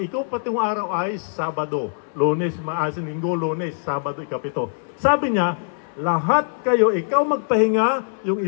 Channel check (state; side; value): silent; right; 62 dB below the other